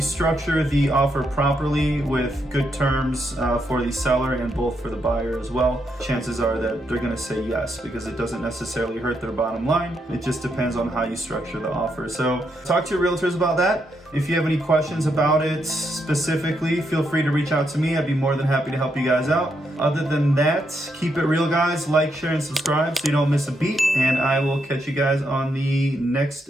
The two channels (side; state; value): both; normal; correlation 0.79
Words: structure the offer properly with good terms for the seller and both for the buyer as well, chances are that they're going to say yes, because it doesn't necessarily hurt their bottom line. It just depends on how you structure the offer. So talk to your realtors about that. If you have any questions about it specifically, feel free to reach out to me. I'd be more than happy to help you guys out. Other than that, keep it real, guys. Like, share, and subscribe so you don't miss a beat. And I will catch you guys on the next